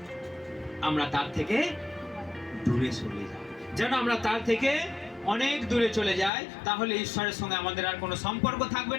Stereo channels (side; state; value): right; drops out; at 6.3 s